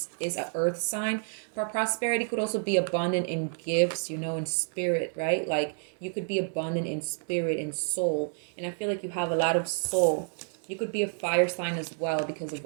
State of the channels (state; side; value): silent; left; 55 dB below the other